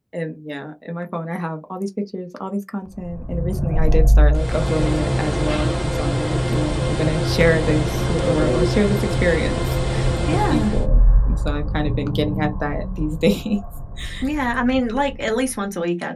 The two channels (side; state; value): both; identical; correlation 1.00